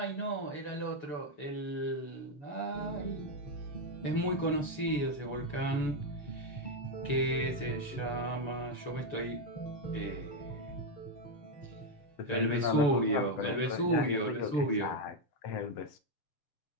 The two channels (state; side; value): late; right; 6.9 ms